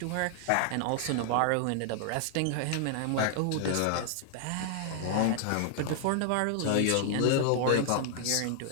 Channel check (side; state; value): both; different; correlation 0.00